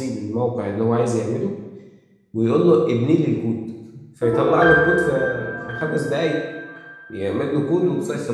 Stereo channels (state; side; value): identical; both; correlation 1.00